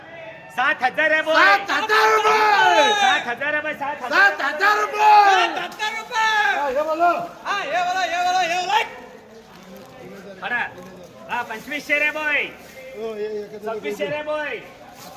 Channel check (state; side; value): identical; both; correlation 1.00